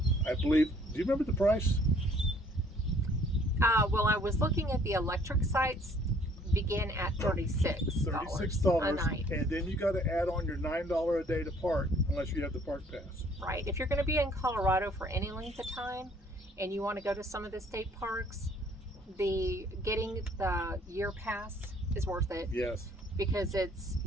believe, do you remember the price? Well, I was looking at the electric sites, began at $36 a night. And then you got to add on your $9 a day to park, unless you have the park pass. Right. If you're going to be in Colorado for any length of time, and you want to go to some of the state parks, getting the year pass is worth it. Yes. Because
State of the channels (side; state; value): both; normal; correlation 0.60